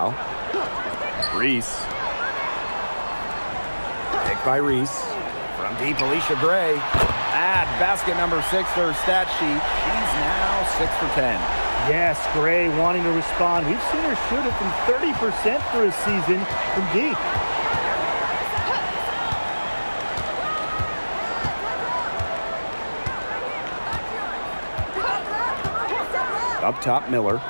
Reese. Pick by Reese. From deep, Alicia Gray. Add basket number 6 to her stat sheet. She's now 6 for 10. Yes, Gray wanting to respond. We've seen her shoot it from 30% for a season from deep. Up top, Miller.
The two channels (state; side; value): inverted; both; correlation -1.00